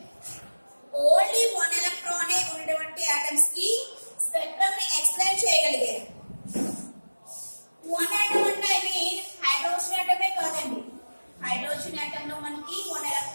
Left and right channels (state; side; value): inverted; both; correlation -1.00